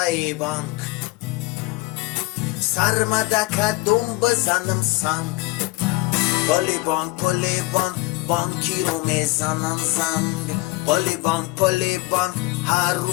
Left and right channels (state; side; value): quieter; right; 21.9 dB